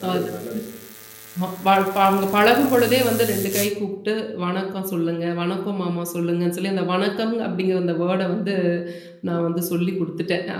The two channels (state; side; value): identical; both; correlation 1.00